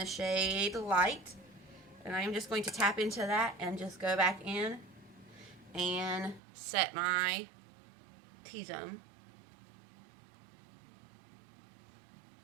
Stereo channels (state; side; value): drops out; left; at 6.4 s